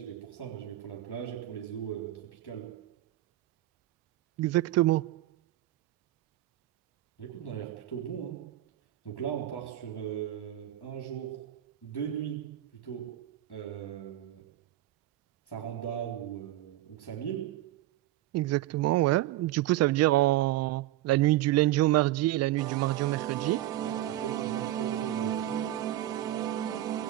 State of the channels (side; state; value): left; quieter; 14.7 dB